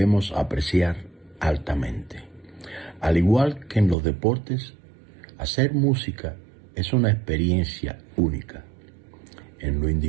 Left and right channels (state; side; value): drops out; left; at 4.0 s